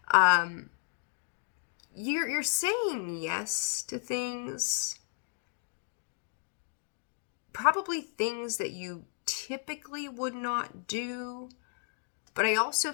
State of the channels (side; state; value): right; silent; digital silence